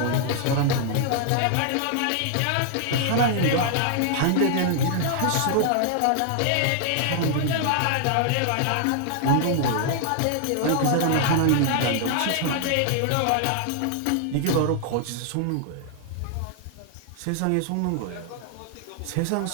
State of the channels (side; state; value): both; different; correlation 0.00